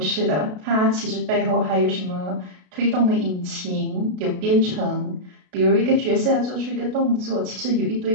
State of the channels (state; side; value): late; left; 33 ms